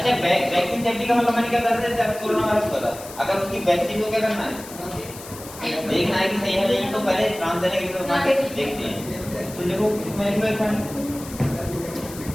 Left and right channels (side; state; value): left; noise; hiss, 15 dB below the sound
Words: वैक्सीन सेफ्टी का मतलब मैंने क्या बताया? जैसे आपको कोरोना वायरस हुआ था, अगर उसकी वैक्सीन को क्या करना है, देखना है कि सही है नहीं, तो पहले ट्रांसजेनिक बना के देखते हैं। तो देखो